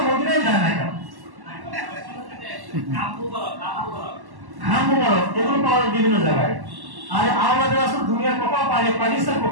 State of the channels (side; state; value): left; late; 1.1 ms